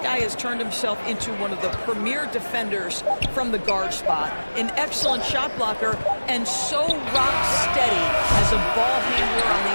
has turned himself into one of the premier defenders from the guard spot, an excellent shot blocker, and so rock steady as a ball handler on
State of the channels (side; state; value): both; inverted; correlation -1.00